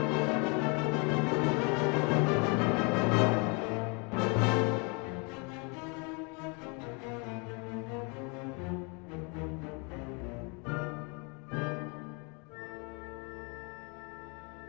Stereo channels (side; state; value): right; quieter; 32.7 dB